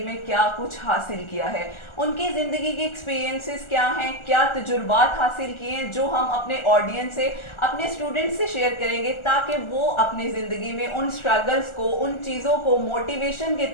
में क्या कुछ हासिल किया है, उनकी ज़िंदगी के एक्सपीरियंसेस क्या हैं, क्या तजुर्बात हासिल किए हैं, जो हम अपने ऑडियंस से, अपने स्टूडेंट्स से शेयर करेंगे ताकि वो अपनी ज़िंदगी में उन स्ट्रगल्स को, उन चीज़ों को मोटिवेशन के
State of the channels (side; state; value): right; late; 1.4 ms